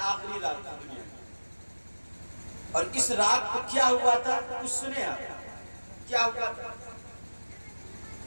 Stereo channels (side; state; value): both; inverted; correlation -1.00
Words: رات تھی دنیا میں۔ اور اس رات کو کیا ہوا تھا کچھ سنے آپ؟ کیا ہوا تھا؟